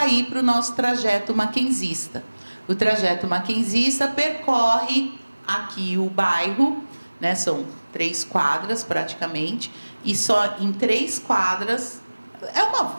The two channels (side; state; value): both; inverted; correlation -1.00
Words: para o nosso trajeto maquenzista. O trajeto maquenzista percorre aqui o bairro, né, são 3 quadras praticamente, e só em 3 quadras, é uma